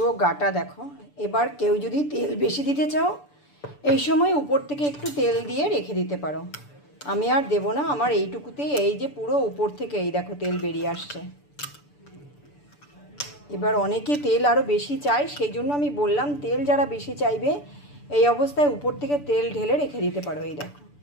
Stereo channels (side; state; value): right; late; 6.9 ms